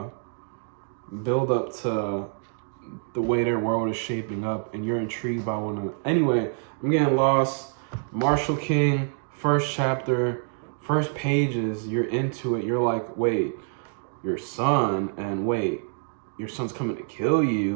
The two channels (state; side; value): silent; left; 61 dB below the other